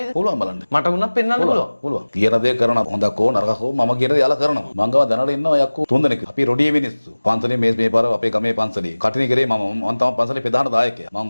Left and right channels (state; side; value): inverted; both; correlation -1.00